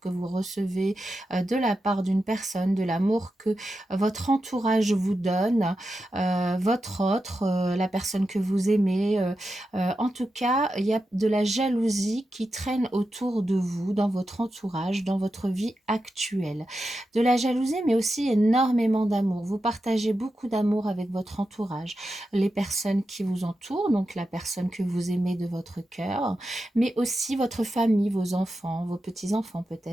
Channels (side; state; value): both; normal; correlation 0.89